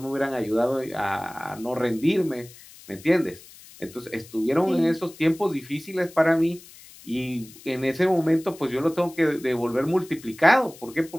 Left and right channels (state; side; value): noise; left; hiss, 21 dB below the sound